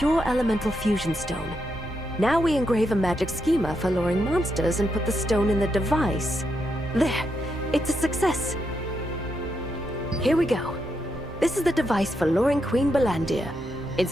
elemental fusion stone. Now we engrave a magic schema for luring monsters and put the stone in the device. There, it's a success. Here we go. This is the device for luring Queen Bellandir.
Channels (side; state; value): both; normal; correlation 0.82